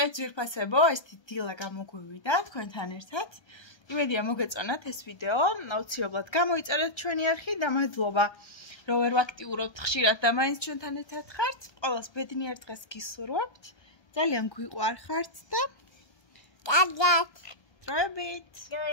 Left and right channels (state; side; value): late; right; 1.3 ms